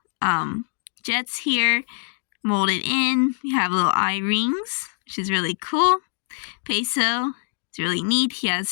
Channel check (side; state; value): right; silent; digital silence